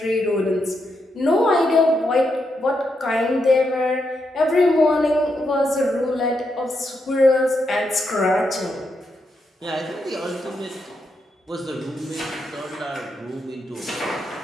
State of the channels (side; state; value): both; normal; correlation 0.82